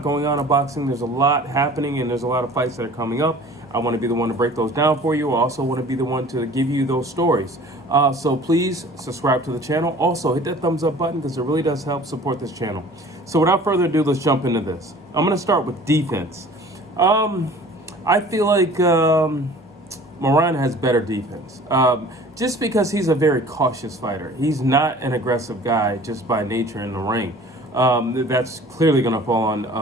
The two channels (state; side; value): normal; both; correlation 0.46